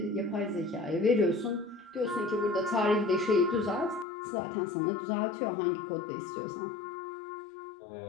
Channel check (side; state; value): right; drops out; at 4.0 s